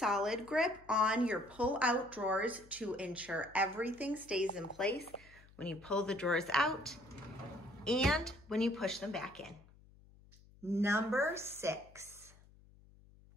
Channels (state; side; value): noise; left; hum, 25 dB below the sound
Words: Grip on your pull-out drawers to ensure everything stays in place when you pull the drawers out and when you push them back in. Number 6.